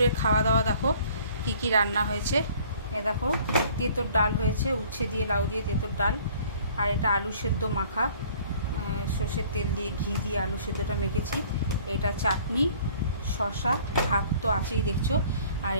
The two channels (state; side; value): inverted; both; correlation -0.54